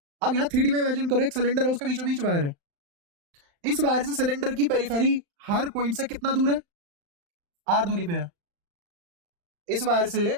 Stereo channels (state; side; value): late; left; 35 ms